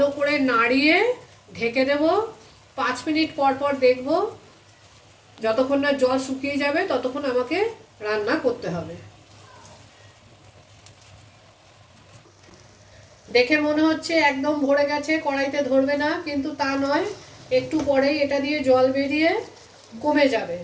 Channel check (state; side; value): identical; both; correlation 1.00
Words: করে নাড়িয়ে ঢেকে দেব। 5 মিনিট পর পর দেখব, যতক্ষণ না জল শুকিয়ে যাবে ততক্ষণ আমাকে রান্না করতে হবে। দেখে মনে হচ্ছে একদম ভরে গেছে, কড়াইতে ধরবে না, কিন্তু তা নয়। একটু পরেই এটা দিয়ে জল বেরিয়ে কমে যাবে।